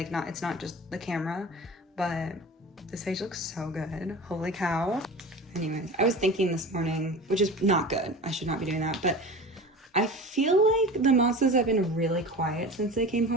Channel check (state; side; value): normal; both; correlation 0.34